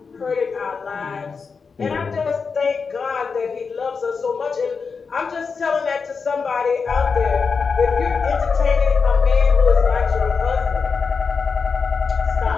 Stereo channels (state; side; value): quieter; right; 5.2 dB